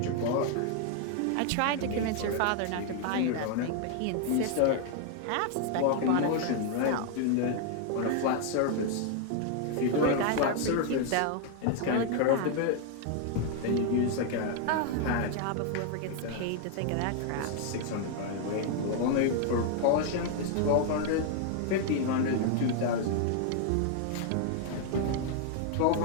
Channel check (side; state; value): both; different; correlation 0.00